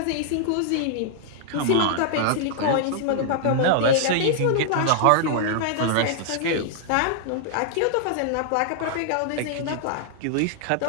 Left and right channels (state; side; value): different; both; correlation -0.01